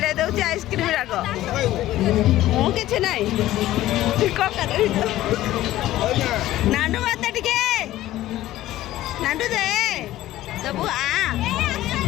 ଦେଉଛି ଆଇସ୍କ୍ରିମ୍ ଯାକ ମୁଁ କିଛି ନାହିଁ ନାଣ୍ଡୁ ମତେ ଟିକେ ନାଣ୍ଡୁ ଦେ ଦେବୁ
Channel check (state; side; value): quieter; right; 14.9 dB